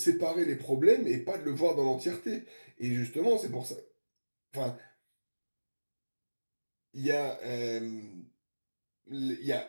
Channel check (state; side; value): inverted; both; correlation -1.00